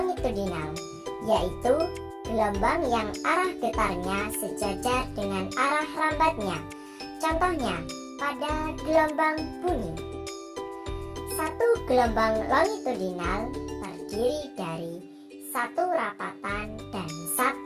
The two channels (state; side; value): identical; both; correlation 1.00